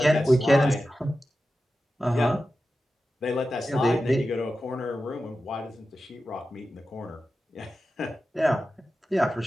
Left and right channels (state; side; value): normal; both; correlation 0.93